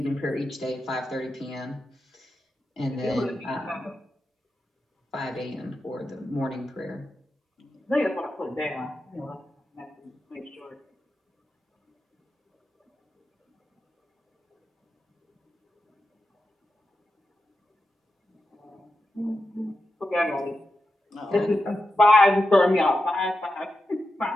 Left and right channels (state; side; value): normal; both; correlation 0.89